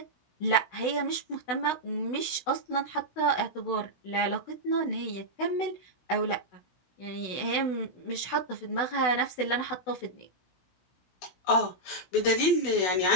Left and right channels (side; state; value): right; late; 16 ms